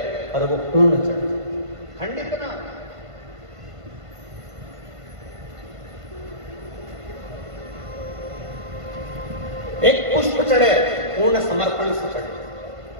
पर वो पूर्ण चढ़े, खंडित ना। एक पुष्प चढ़े पूर्ण समर्पण से चढ़े,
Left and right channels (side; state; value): left; late; 1.5 ms